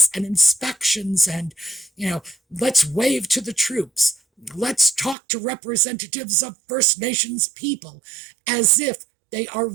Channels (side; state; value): left; drops out; at 5.2 s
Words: and inspections and, let's wave to the troops. Let's talk to representatives of First Nations people as if they are